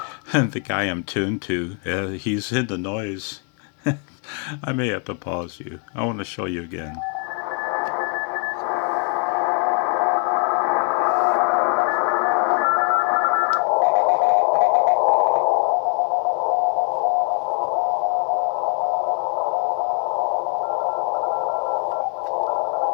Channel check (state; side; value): quieter; right; 37.6 dB